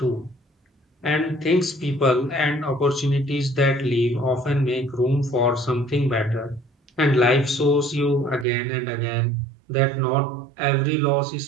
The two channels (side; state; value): left; drops out; at 8.5 s